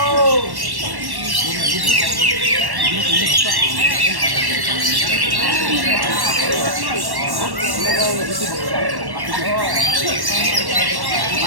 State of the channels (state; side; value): late; left; 1.1 ms